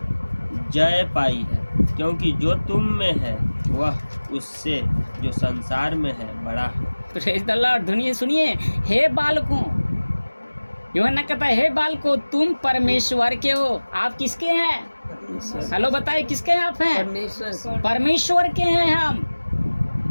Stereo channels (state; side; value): inverted; both; correlation -1.00